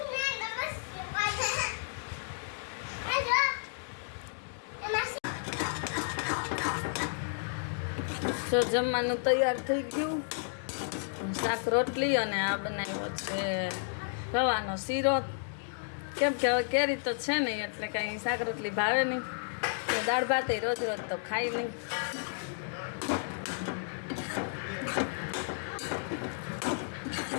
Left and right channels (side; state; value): right; silent; digital silence